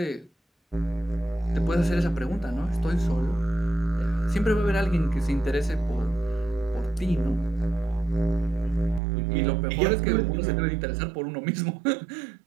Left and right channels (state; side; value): drops out; left; at 9.0 s